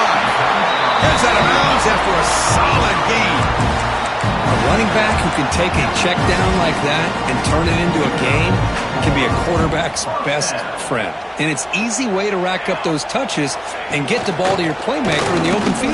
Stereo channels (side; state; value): both; identical; correlation 1.00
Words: Gets out of bounds after a solid gain. A running back who can take a check down like that and turn it into a gain can be a quarterback's best friend. And it's an easy way to rack up those touches and get the ball to your playmaker in the open